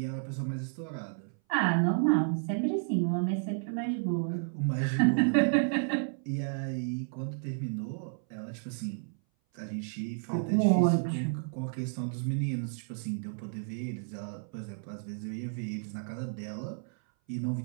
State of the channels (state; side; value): silent; left; 57 dB below the other